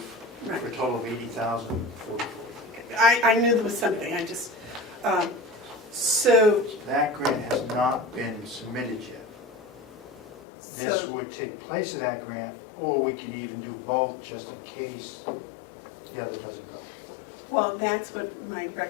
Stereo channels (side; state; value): right; drops out; at 10.4 s